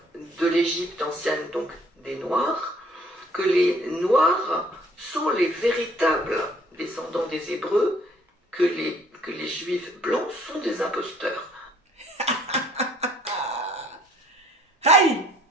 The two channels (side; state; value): both; normal; correlation 0.59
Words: de l'Égypte ancienne, donc des Noirs, que les Noirs sont les véritables descendants des Hébreux, que les Juifs blancs sont des imposteurs. Hey,